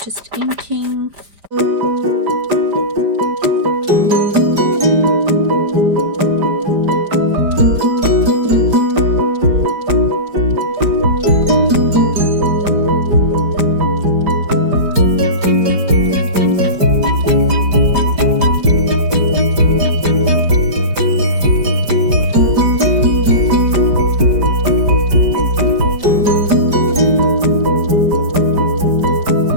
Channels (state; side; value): late; left; 5.0 ms